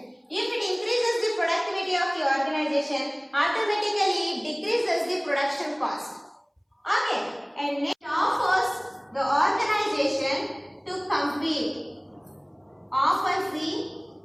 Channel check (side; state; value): both; identical; correlation 1.00